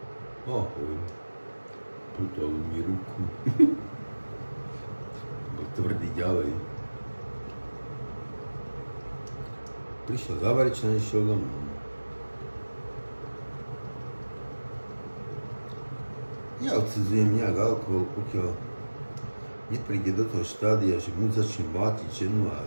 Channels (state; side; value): inverted; both; correlation -1.00